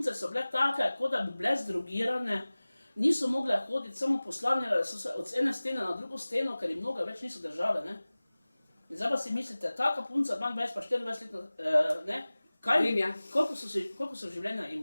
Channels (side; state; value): both; inverted; correlation -0.99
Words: so bile take, kot da bi bile zdrogirane, niso mogle hoditi, samo poslavljale so se od ene stene na drugo steno, ker jim noge več niso držale, ne. In zdaj pa si mislite, taka punca, 22 pa 24 letna, ne, kaj, koliko so življenja